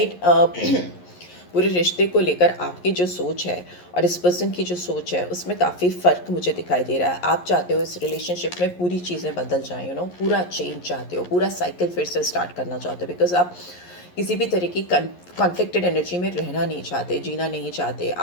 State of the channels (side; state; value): right; late; 11 ms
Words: पूरे रिश्ते को लेकर आपकी जो सोच है और इस पर्सन की जो सोच है उसमें काफ़ी फ़र्क मुझे दिखाई दे रहा है। आप चाहते हो इस रिलेशनशिप में पूरी चीज़ें बदल जाएं, पूरा चेंज चाहते हो, पूरा साइकिल फिर से स्टार्ट करना चाहते हो। बिकॉज आप किसी भी तरह की कॉन्फ्लिक्टेड एनर्जी में रहना नहीं चाहते, जीना नहीं चाहते।